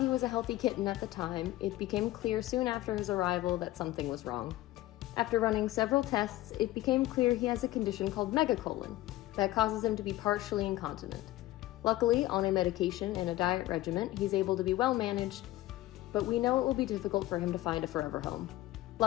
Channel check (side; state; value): right; quieter; 16.3 dB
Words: was a healthy kitten at the time, it became clear soon after his arrival that something was wrong. After running several tests, it became clear he has a condition called megacolon that causes him to be partially incontinent. Luckily, on a medication and a diet regimen, he's able to be well managed, but we know it will be difficult for him to find a forever home.